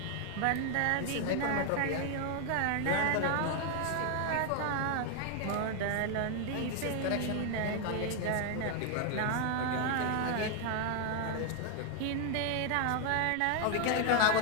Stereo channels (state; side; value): different; both; correlation 0.00